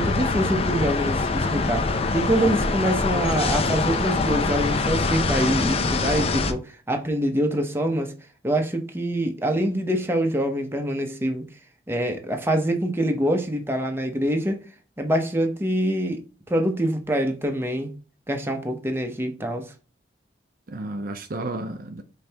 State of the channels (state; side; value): normal; both; correlation 0.61